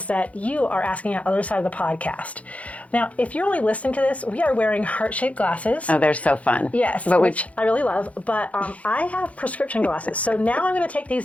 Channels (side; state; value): right; late; 0.066 ms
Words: that you are asking on the other side of the podcast. Now, if you're only listening to this, we are wearing heart-shaped glasses. Oh, they're so fun. Yes, which I really love, but I have prescription glasses. So now I'm going to take